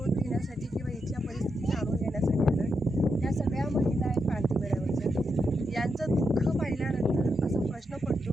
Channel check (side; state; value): both; normal; correlation 0.84